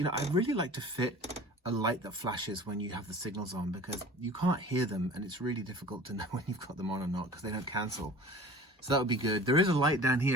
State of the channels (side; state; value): both; normal; correlation 0.42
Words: really like to fit a light that flashes when you have the signals on, because you can't hear them and it's really difficult to know when you've got them on or not because they don't cancel. So that would be good. There is a light down here.